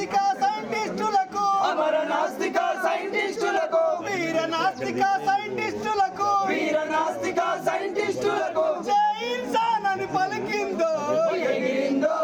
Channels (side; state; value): both; identical; correlation 1.00